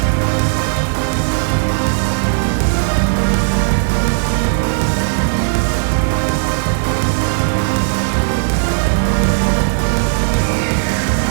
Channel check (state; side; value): silent; left; 62 dB below the other